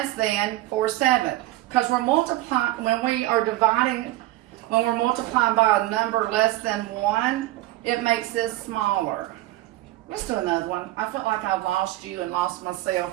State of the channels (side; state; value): left; quieter; 16.8 dB